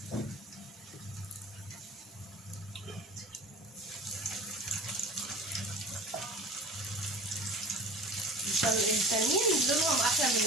الثانيين دولهم احلى من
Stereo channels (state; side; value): normal; both; correlation 0.40